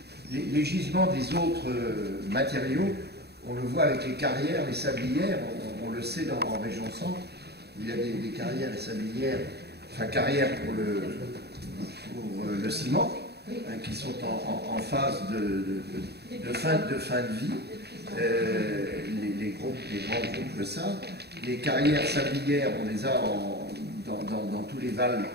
les gisements des autres matériaux, on le voit avec les carrières, les sablières, on le sait en région centre, il y a des carrières et sablières, enfin carrières pour le ciment, hein, qui sont en phase de fin de vie. grands groupes le savent. Les carrières sablières, on les a dans tous les vals,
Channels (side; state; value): left; late; 0.48 ms